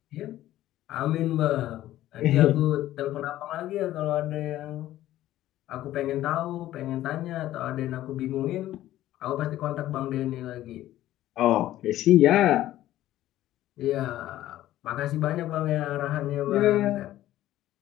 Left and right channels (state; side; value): quieter; right; 14.1 dB